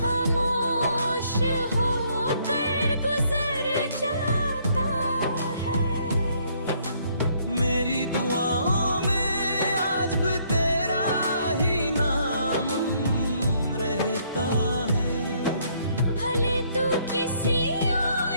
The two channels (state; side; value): inverted; both; correlation -0.67